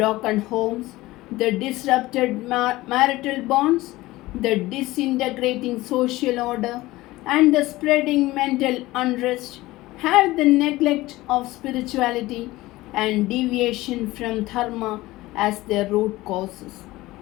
homes, the disrupted marital bonds, the disintegrating social order, and the spreading mental unrest have the neglect of spirituality and deviation from dharma as their root causes.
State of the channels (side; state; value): right; quieter; 18.5 dB